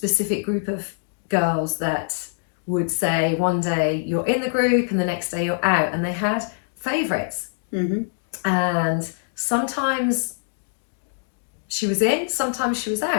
group of girls that would say one day you're in the group and the next day you're out, and they had favourites. And sometimes she was in, sometimes she was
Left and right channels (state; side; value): silent; right; digital silence